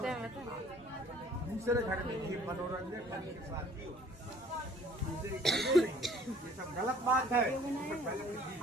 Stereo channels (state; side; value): normal; both; correlation 0.54